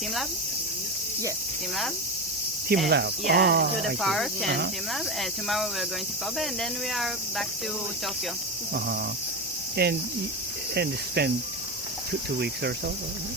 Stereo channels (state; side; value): normal; both; correlation 0.17